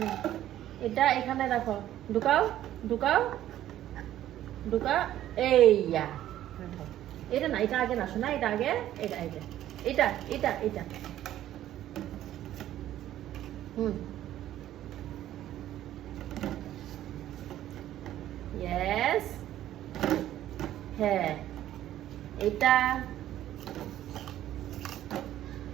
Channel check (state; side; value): quieter; left; 12.7 dB